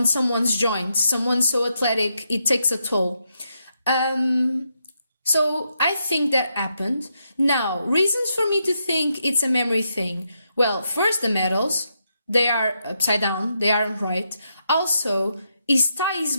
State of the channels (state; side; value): inverted; both; correlation -0.81